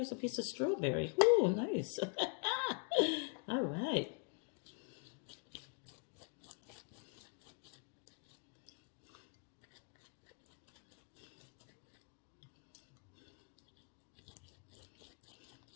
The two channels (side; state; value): right; quieter; 37.0 dB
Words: a piece of strawberry. Ooh, nice. All right.